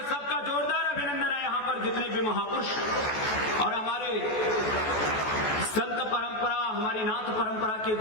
सबका जोरदार अभिनंदन है यहाँ पर जितने भी महापुरुष। और हमारे संत परंपरा, हमारी नाथ परंपरा के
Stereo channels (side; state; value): right; late; 14 ms